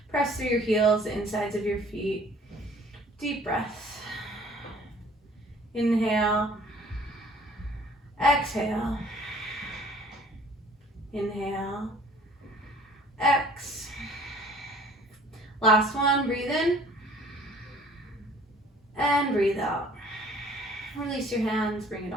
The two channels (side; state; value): both; normal; correlation 0.53